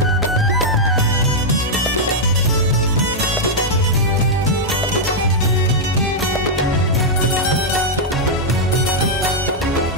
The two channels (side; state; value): both; normal; correlation -0.04